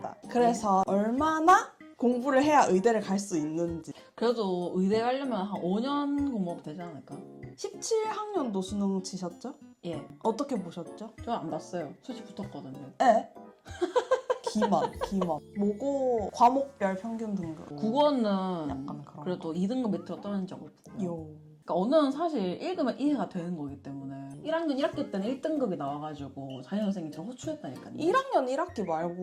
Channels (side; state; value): both; identical; correlation 1.00